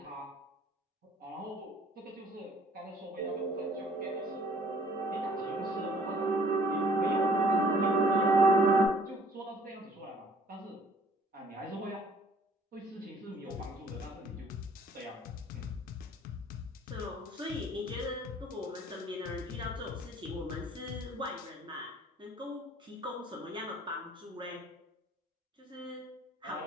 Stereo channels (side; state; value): both; normal; correlation 0.57